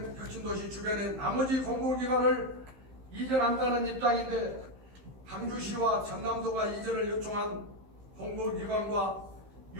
혁신도시 주변의 나머지 공공기관을 이전한다는 입장인데 강주시와 전남도가 이전을 요청한 공공기관과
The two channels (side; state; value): left; late; 15 ms